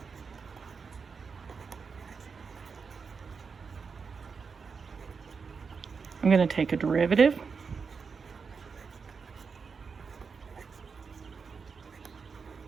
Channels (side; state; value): left; quieter; 5.4 dB